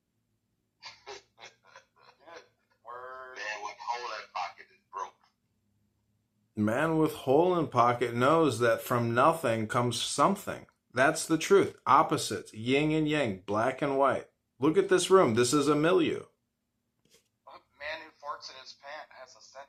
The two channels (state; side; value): identical; both; correlation 1.00